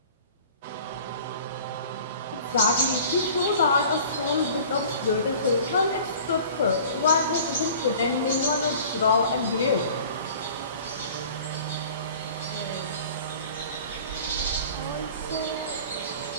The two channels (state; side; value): inverted; both; correlation -0.45